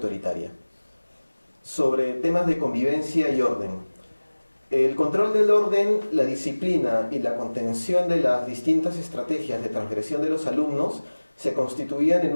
Sobre temas de convivencia y orden. El control del orden, la disciplina y la contención de las distintas estrategias de transgresión de los alumnos se constituían en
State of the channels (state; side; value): inverted; both; correlation -1.00